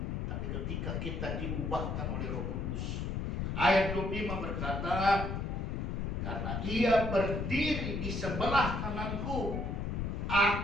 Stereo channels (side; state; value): left; noise; rumble, 2 dB below the sound